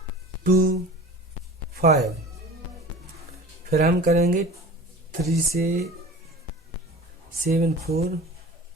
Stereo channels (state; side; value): normal; both; correlation 0.39